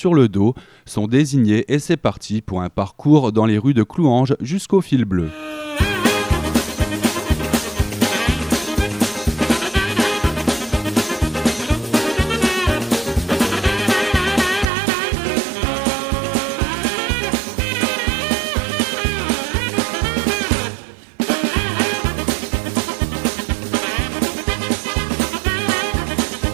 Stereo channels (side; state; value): left; drops out; at 14.7 s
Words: le dos, sont désignés et c'est parti pour un parcours dans les rues de Clouanges jusqu'au fil bleu.